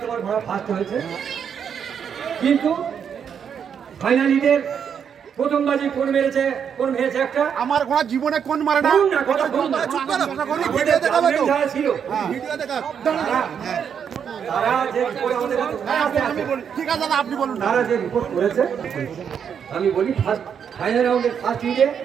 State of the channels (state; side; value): quieter; left; 7.6 dB